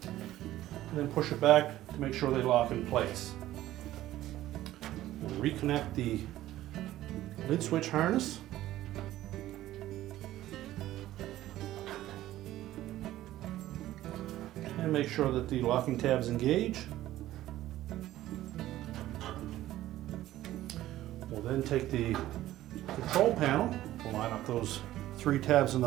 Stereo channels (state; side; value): quieter; left; 14.5 dB